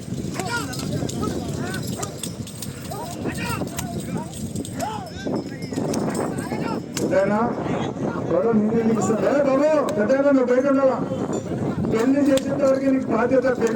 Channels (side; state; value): both; identical; correlation 1.00